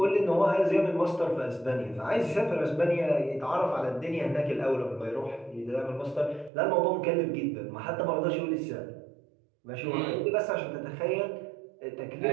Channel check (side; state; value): left; drops out; at 6.5 s